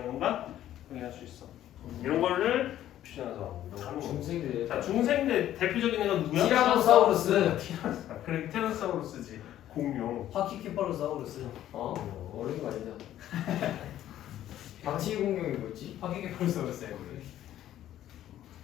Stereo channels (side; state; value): right; quieter; 12.3 dB